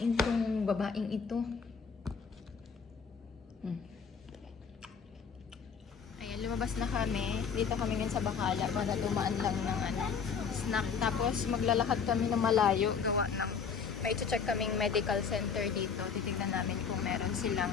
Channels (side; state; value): right; quieter; 6.2 dB